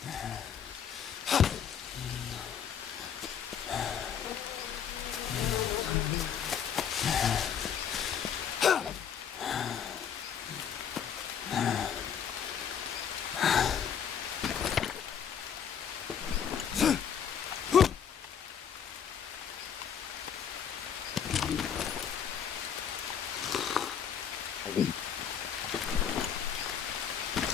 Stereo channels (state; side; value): quieter; right; 8.1 dB